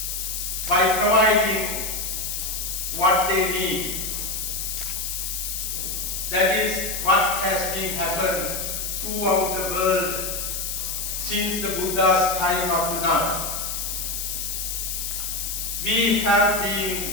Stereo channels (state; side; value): noise; left; hiss, 3 dB below the sound